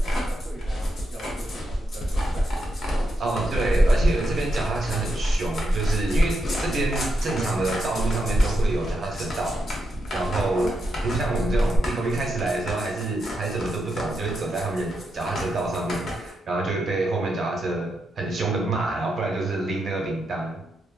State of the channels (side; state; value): both; normal; correlation 0.84